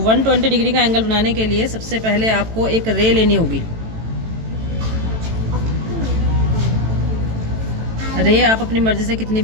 120 डिग्री का एंगल बनाने के लिए सबसे पहले आपको एक रे लेनी होगी। रे आप अपनी मर्जी से कितनी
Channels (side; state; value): left; late; 18 ms